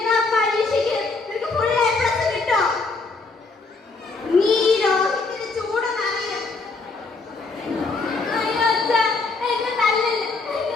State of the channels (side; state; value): right; quieter; 3.9 dB